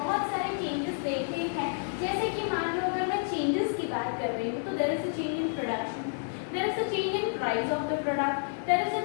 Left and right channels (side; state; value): right; silent; digital silence